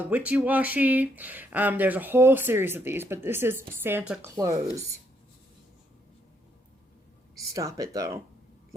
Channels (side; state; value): both; normal; correlation 0.73